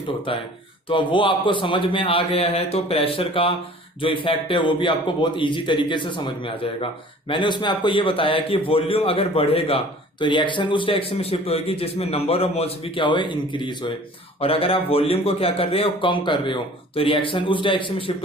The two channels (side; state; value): both; normal; correlation 0.48